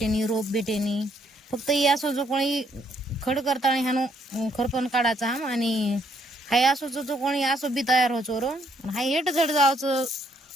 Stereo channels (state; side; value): normal; both; correlation 0.70